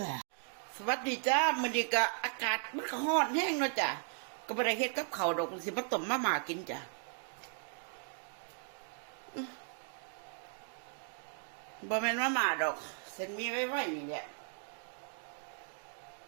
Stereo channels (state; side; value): silent; left; 53 dB below the other